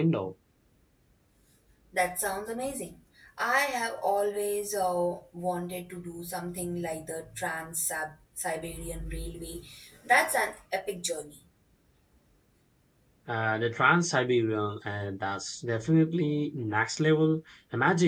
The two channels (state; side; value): identical; both; correlation 1.00